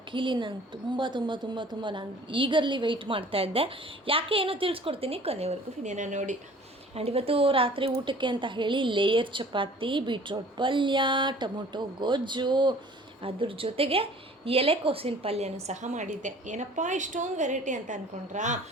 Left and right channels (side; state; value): both; normal; correlation 0.49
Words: ನಂಗೆ ತುಂಬ ನಾನು ಈಗರ್ಲಿ ವೆಯ್ಟ್ ಮಾಡ್ತಾಯಿದ್ದೆ. ಯಾಕೆ ಏನೋ ತಿಳಿಸ್ಕೊಡ್ತೀನಿ, ಕೊನೆವರೆಗೂ ವಿಡಿಯೋನ ನೋಡಿ. ಆ್ಯಂಡ್ ಇವತ್ತು ರಾತ್ರಿ ಊಟಕ್ಕೆ ಅಂತ ಹೇಳಿ ಲೇಯರ್ ಚಪಾತಿ, ಬೀಟ್ರೋಟ್ ಪಲ್ಯ, ಟೊಮೊಟೊ ಗೊಜ್ಜು, ಅದ್ರ ಜೊತೆಗೆ ಎಲೆಕೋಸಿನ ಪಲ್ಯನೂ ಸಹ ಮಾಡಿದ್ದೆ. ಏನಪ್ಪ ಇಷ್ಟೊಂದು ವೆರೈಟಿ ಅಂತ ಅಂದ್ಕೊಂಡ್ರಾ?